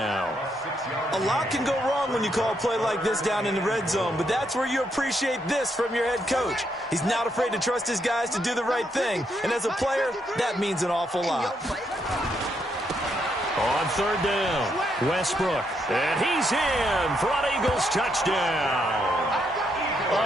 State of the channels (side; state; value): both; normal; correlation 0.77